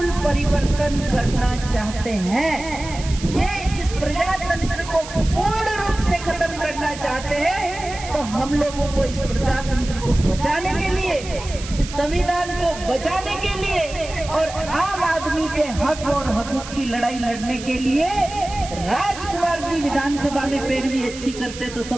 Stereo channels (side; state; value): right; noise; hiss, 13 dB below the sound